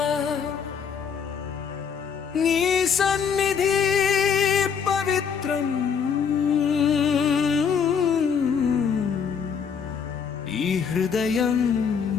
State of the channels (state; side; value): quieter; right; 6.8 dB